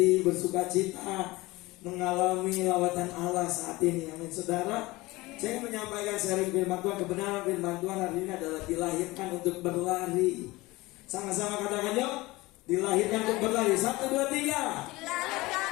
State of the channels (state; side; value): quieter; right; 20.9 dB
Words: bersuka cita, mengalami lawatan Allah saat ini. Amin saudara. Saya ingin menyampaikan sharing firman Tuhan. Kebenaran firman Tuhan hari ini adalah dilahirkan untuk berlari. Sama-sama katakan yuk, dilahirkan untuk berlari. 1, 2, 3. Dilahirkan